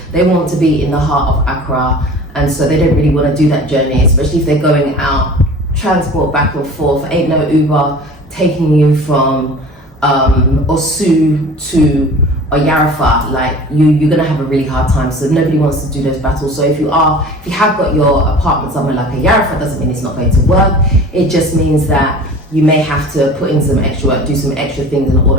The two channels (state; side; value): normal; both; correlation 0.41